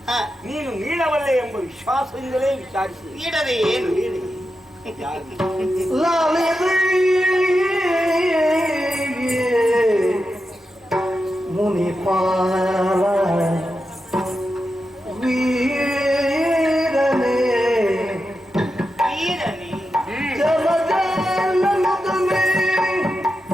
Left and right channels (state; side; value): normal; both; correlation 0.89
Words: ನೀನು ನೀಡಬಲ್ಲೆ ಎಂಬ ವಿಶ್ವಾಸದಿಂದಲೇ ವಿಚಾರಿಸಿ. ನೀಡದೆ ಏನು ಹೇಳಿ? ಮುನಿಪಾಲ ವೀರನೇ ವೀರನೇ ಜಲಜಾಲನುಗಮೆ